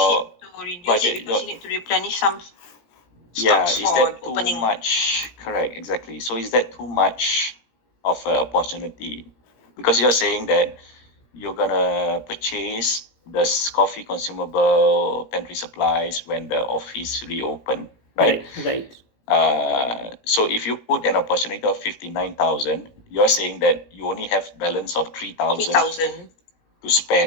you need to reduce budget? it because you need to replenish some Yeah, stocks is for that too opening. much? Correct, exactly. So is that too much of an opportunity? Because you're saying that you're gonna purchase the coffee consumable pantry supplies when the office reopen, right? Right. So if you put an opportunity of 59,000, you're saying that you only have balance of 3,000 3,000. to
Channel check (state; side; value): late; right; 17 ms